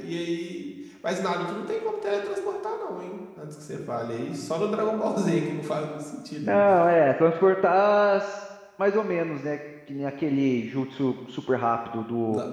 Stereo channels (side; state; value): both; identical; correlation 1.00